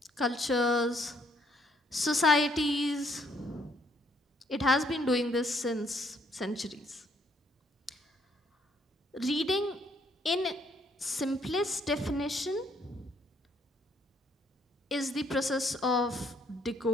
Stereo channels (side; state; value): both; normal; correlation 0.68